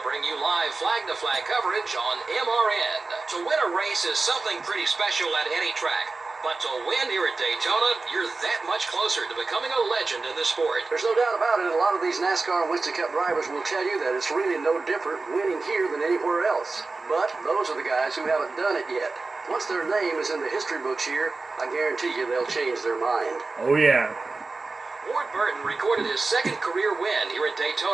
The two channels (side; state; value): left; quieter; 3.7 dB